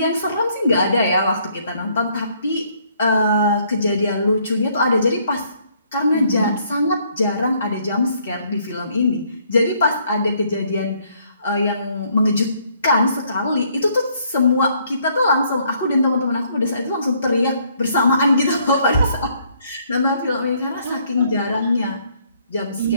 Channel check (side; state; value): both; inverted; correlation -0.67